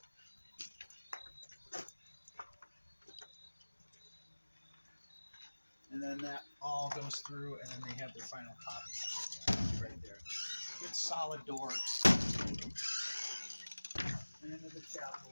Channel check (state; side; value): inverted; both; correlation -1.00